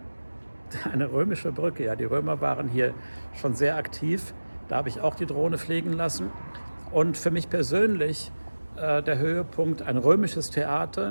Eine römische Brücke, ja, die Römer waren hier schon sehr aktiv. Da habe ich auch die Drohne fliegen lassen. Und für mich persönlich der Höhepunkt, ein römisches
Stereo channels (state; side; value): inverted; both; correlation -1.00